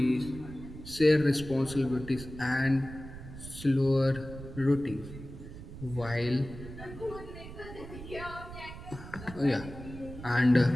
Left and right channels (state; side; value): noise; right; rumble, 13 dB below the sound